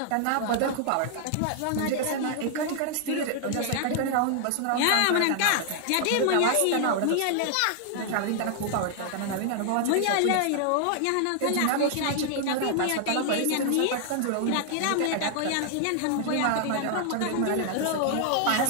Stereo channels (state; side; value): different; both; correlation 0.00